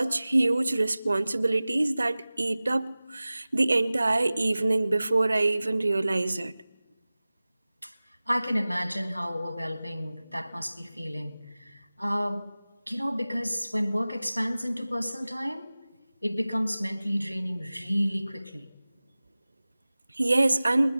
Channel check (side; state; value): both; inverted; correlation -0.98